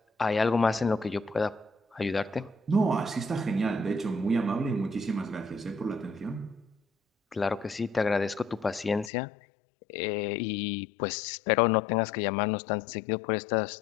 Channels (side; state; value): right; drops out; at 9.1 s